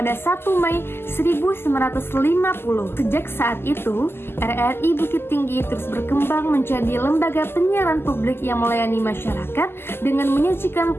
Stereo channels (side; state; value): right; late; 0.12 ms